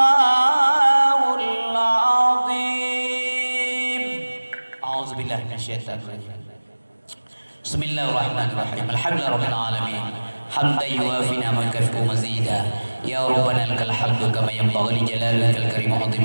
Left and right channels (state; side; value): inverted; both; correlation -1.00